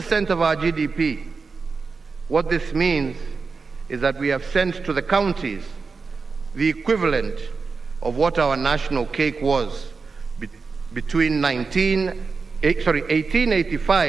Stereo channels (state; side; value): quieter; left; 4.6 dB